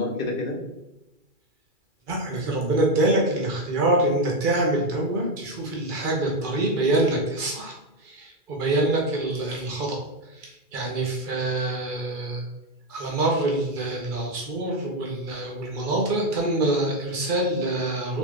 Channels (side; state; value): left; late; 2.4 ms